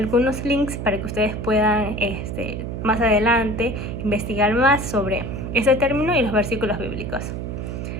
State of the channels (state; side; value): noise; right; hum, 5 dB below the sound